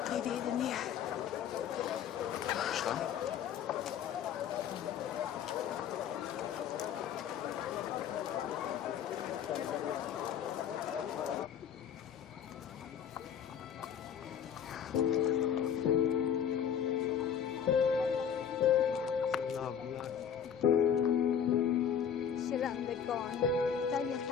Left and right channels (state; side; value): quieter; right; 8.3 dB